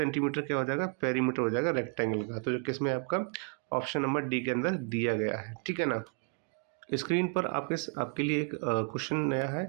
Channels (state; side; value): quieter; left; 36.5 dB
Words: क्या हो जाएगा, पेरीमीटर हो जाएगा रेक्टेंगल का। तो जो किसमें आपका ऑप्शन नंबर डी के अंदर दिया गया है। ठीक है ना। स्क्रीन पर आपके लिए एक क्वेश्चन नया